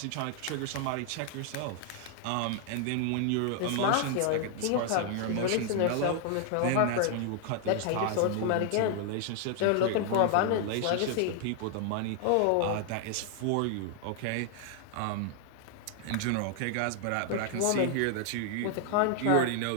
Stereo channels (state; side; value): different; both; correlation 0.00